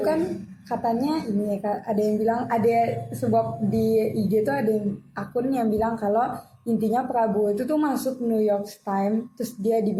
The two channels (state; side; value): identical; both; correlation 1.00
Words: kan katanya ini ada yang bilang ada sebab di IG itu ada akun yang bilang kalau intinya Prabowo itu tuh masuk New York Times terus dia